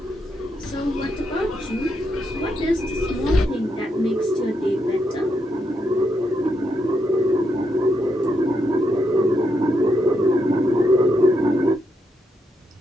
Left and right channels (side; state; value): both; normal; correlation 0.80